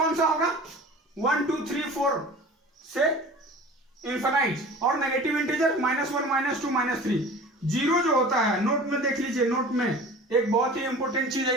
सा होगा? 1 2 3 4 से इन्फिनाइट, और नेगेटिव इंटीजर -1 -2 -3। जीरो जो होता है, नोट में देख लीजिए, नोट में एक बहुत ही इंपॉर्टेंट चीज है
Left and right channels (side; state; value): both; normal; correlation 0.41